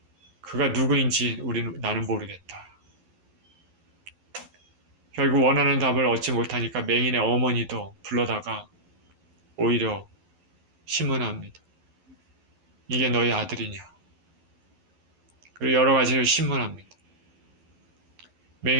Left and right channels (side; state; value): left; late; 12 ms